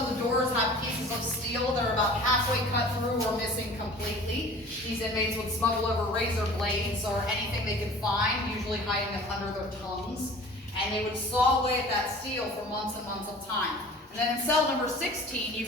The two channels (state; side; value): normal; both; correlation 0.44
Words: of the doors have pieces of steel that are about halfway cut through or missing completely. These inmates would smuggle over razor blades or anything they could find, usually hiding them under their tongues. And they would saw away at that steel for months and months of time. And then in cell number 16, you